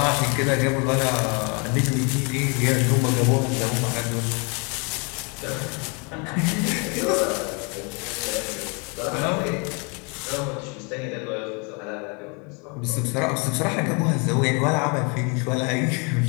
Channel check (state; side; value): quieter; right; 33.2 dB